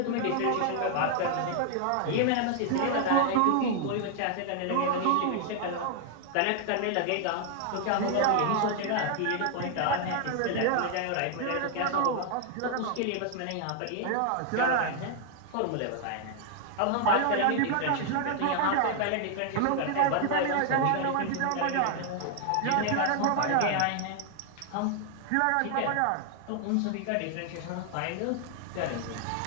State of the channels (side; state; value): both; different; correlation 0.00